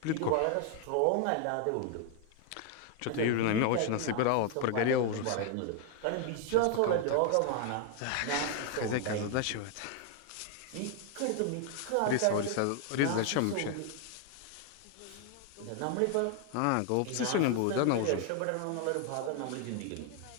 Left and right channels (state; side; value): different; both; correlation 0.00